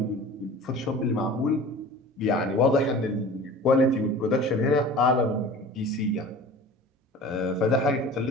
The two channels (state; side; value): normal; both; correlation 0.40